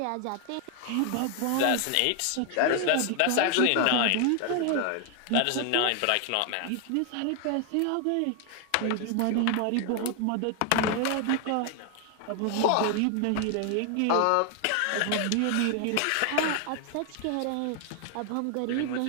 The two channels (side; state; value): both; different; correlation 0.00